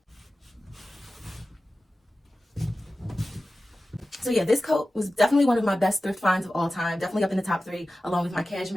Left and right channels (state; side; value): normal; both; correlation 0.95